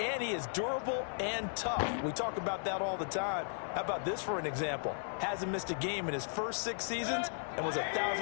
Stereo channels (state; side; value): silent; right; digital silence